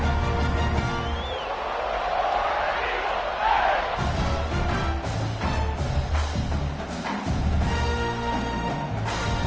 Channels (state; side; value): identical; both; correlation 1.00